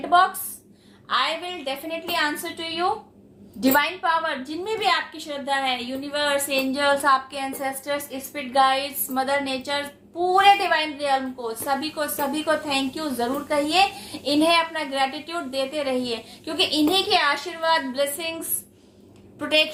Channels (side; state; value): both; identical; correlation 1.00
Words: box. I will definitely answer to you. Divine power जिनमें भी आपकी श्रद्धा है, यूनिवर्स, एंजल्स, आपके ancestors, spirit guides, mother nature, पूरे डिवाइन रियल्म को सभी को थैंक यू जरूर कहिए। इन्हें अपना ग्रेटिट्यूड देते रहिए, क्योंकि इन्हीं के आशीर्वाद, ब्लेसिंग्स,